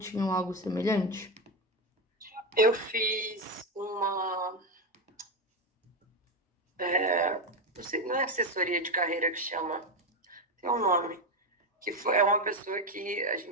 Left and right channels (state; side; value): normal; both; correlation 0.11